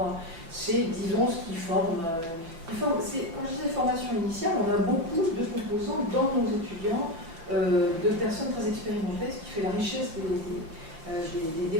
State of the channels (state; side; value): late; left; 5.9 ms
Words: disons ce qui forme. Quand je disais formation initiale, on a beaucoup de composants dans nos étudiants, de personnes très expérimentées, ce qui fait la richesse